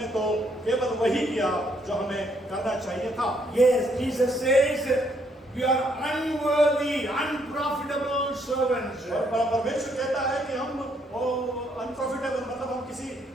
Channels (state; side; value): normal; both; correlation 0.71